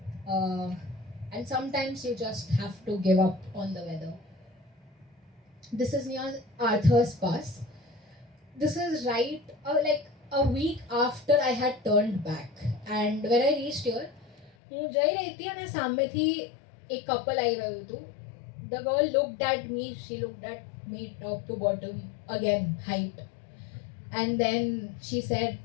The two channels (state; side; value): drops out; right; at 14.5 s